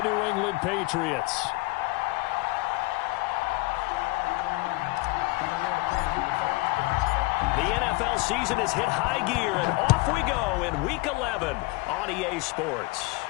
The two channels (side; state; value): right; quieter; 23.0 dB